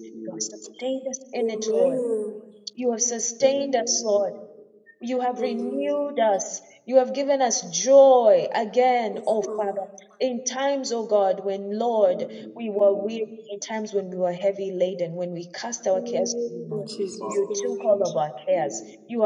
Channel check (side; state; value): both; identical; correlation 1.00